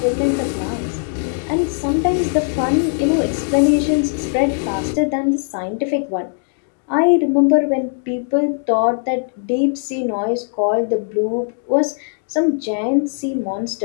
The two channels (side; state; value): right; silent; 66 dB below the other